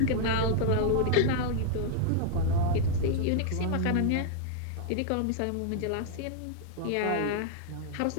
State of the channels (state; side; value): different; both; correlation -0.01